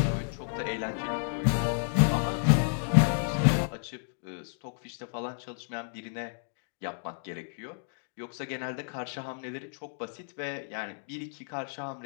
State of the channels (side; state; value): right; silent; digital silence